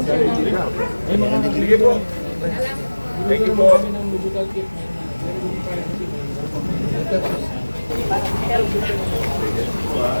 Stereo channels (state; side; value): inverted; both; correlation -1.00